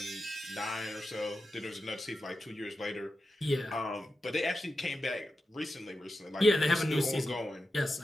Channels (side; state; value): both; normal; correlation 0.90